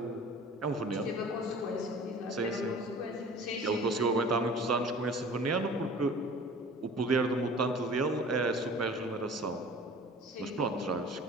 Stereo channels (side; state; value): both; normal; correlation 0.44